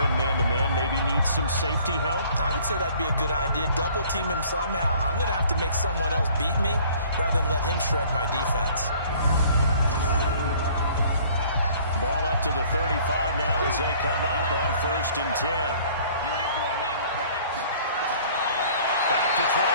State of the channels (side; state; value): both; inverted; correlation -0.54